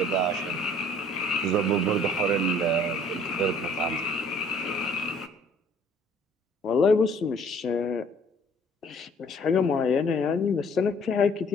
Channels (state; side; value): normal; both; correlation 0.56